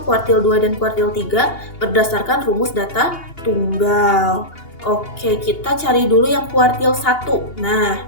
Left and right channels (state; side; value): late; right; 2.8 ms